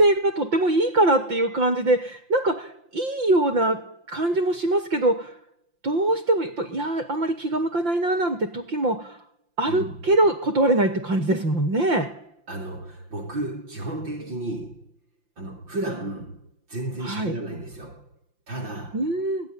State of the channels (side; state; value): left; late; 5.8 ms